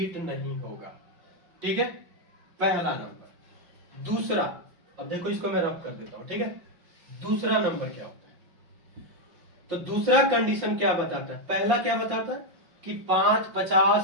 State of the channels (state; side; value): late; left; 5.6 ms